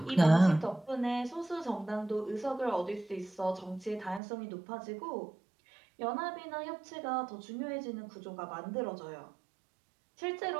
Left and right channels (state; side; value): drops out; left; at 4.2 s